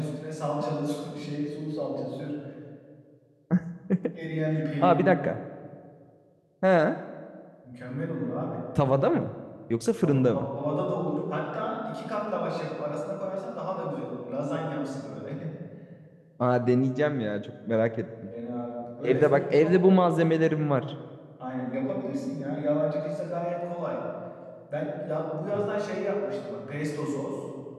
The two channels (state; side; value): identical; both; correlation 1.00